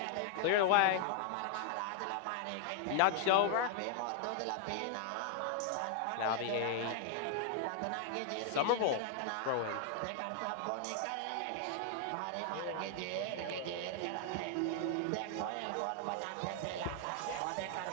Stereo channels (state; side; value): different; both; correlation 0.00